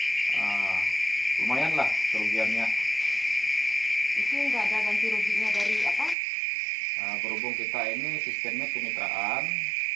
lumayan lah kerugiannya. Itu nggak ada ganti ruginya dari apa? Berhubung kita ini sistemnya kemitraan.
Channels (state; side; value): drops out; left; at 6.2 s